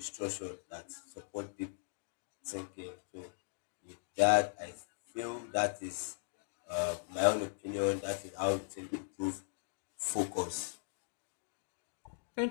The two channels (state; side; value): silent; right; digital silence